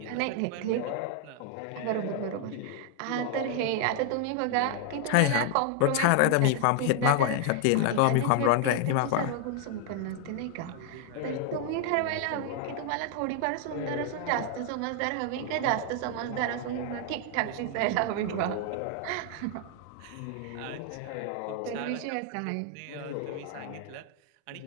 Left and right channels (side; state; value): both; different; correlation 0.00